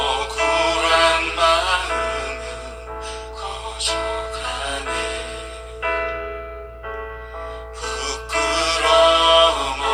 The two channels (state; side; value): identical; both; correlation 1.00